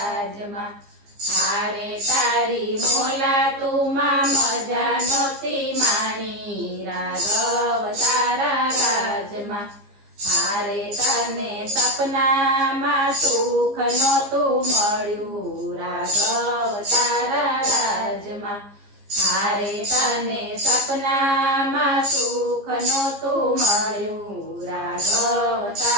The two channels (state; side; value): late; left; 15 ms